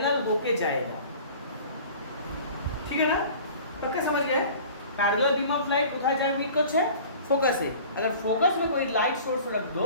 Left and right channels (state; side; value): inverted; both; correlation -0.44